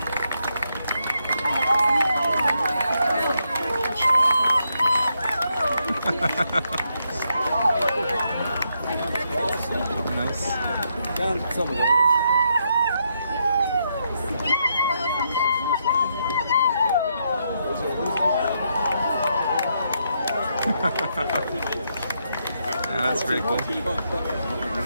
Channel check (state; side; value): inverted; both; correlation -0.78